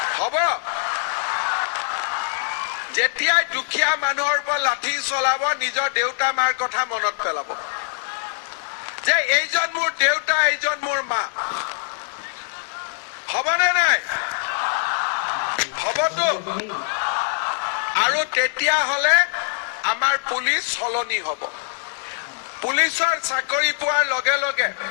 হ'ব যেতিয়াই দুখীয়া মানুহৰ ওপৰত লাঠি চলাব নিজৰ দেউতা মাৰ কথা মনত পেলাব যে এইজন মোৰ দেউতা এইজন মোৰ মা হ'বনে নাই হ'বতো আৰু তেতিয়া হলে আমাৰ পুলিচ সলনি হ'ব পুলিচৰ চাকৰি পোৱাৰ লগে লগে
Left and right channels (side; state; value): right; silent; digital silence